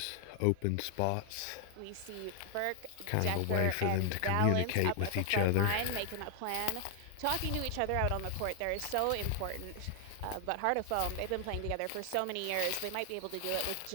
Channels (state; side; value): different; both; correlation 0.00